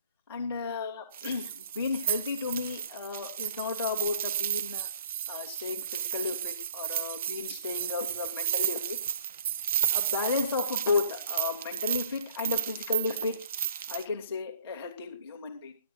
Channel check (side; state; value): both; inverted; correlation -0.53